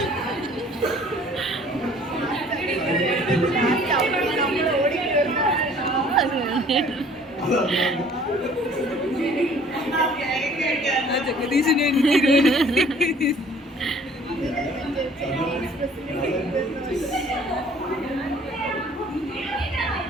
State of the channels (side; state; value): both; normal; correlation 0.54